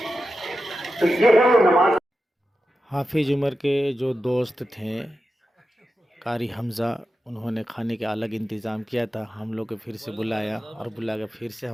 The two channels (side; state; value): both; normal; correlation 0.91